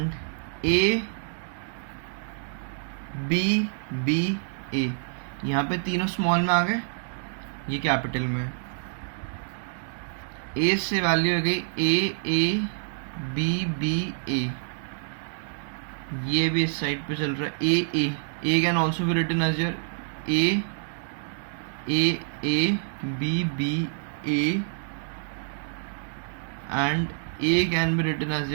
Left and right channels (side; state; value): left; silent; digital silence